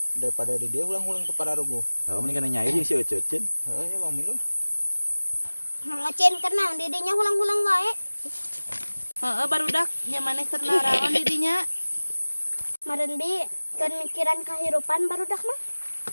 daripada di dia ulang-ulang teu pararugo. Heeh, mending kana nyair jeung si Ece Cin. Heeh, ya Bang Milu. Ngocen kenang didinya hulang-hulang wae. Barudak nya maneh keur naraon di dinya. Maren bi kan mikiran kahirupan barudak mah.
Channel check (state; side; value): inverted; both; correlation -1.00